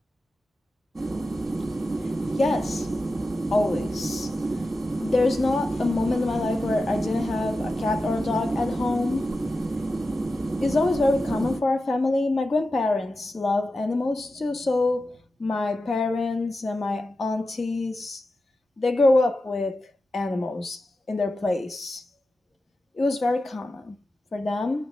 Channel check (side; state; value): both; normal; correlation 0.92